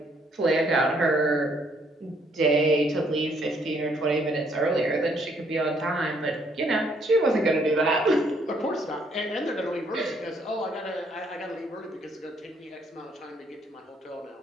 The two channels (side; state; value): both; normal; correlation 0.68